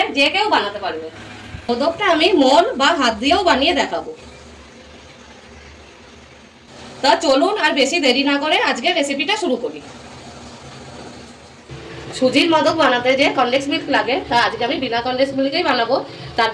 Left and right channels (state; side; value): identical; both; correlation 1.00